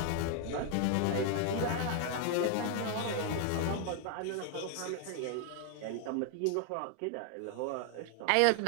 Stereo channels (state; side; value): different; both; correlation 0.00